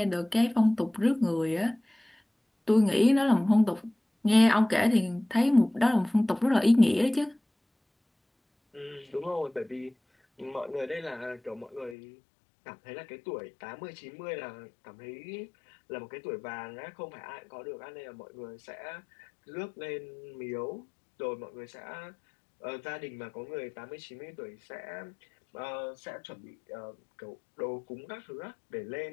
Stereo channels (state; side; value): drops out; right; at 12.0 s